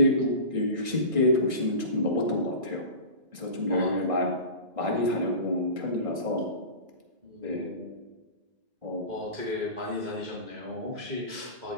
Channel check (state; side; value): late; left; 1.6 ms